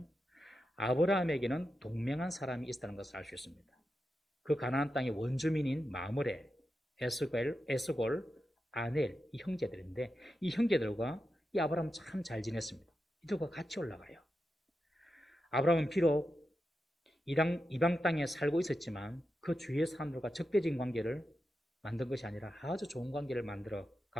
아브라함에게는 동맹한 사람이 있다는 것을 알 수 있습니다. 그 가나안 땅의 원주민인 마므레, 에스골, 아넬 이 형제들인데 이 형제들과 이 아브라함은 참 잘 지냈습니다. 이들과 같이 올라가요. 아브라함은 비록 이방 땅에 살고 있었지만 그 주위의 사람들과 적대적인 관계를 만든 것이 아니라 아주 좋은 관계를 만들어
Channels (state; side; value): normal; both; correlation 0.89